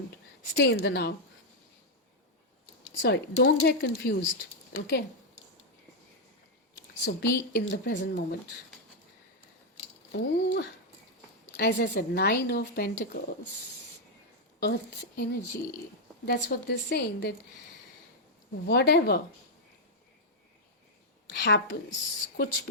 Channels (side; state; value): both; normal; correlation -0.02